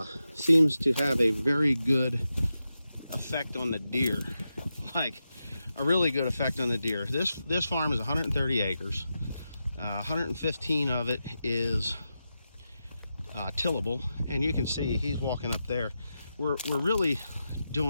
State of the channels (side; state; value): both; inverted; correlation -0.89